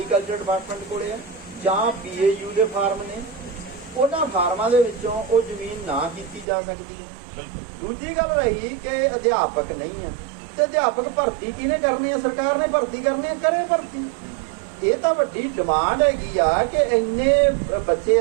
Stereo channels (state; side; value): drops out; left; at 6.5 s